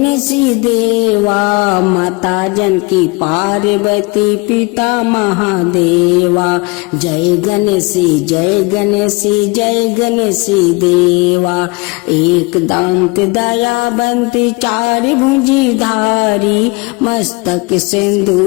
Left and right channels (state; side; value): quieter; right; 26.3 dB